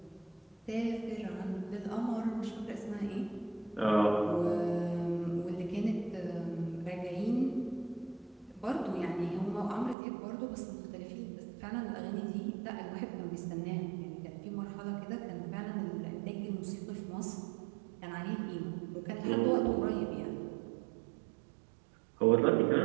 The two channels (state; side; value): drops out; left; at 10.0 s